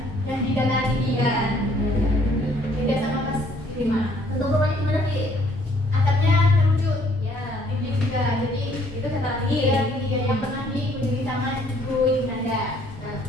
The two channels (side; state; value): both; normal; correlation 0.63